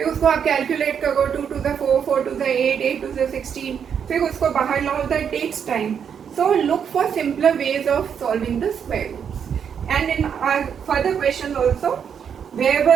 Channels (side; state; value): left; quieter; 7.6 dB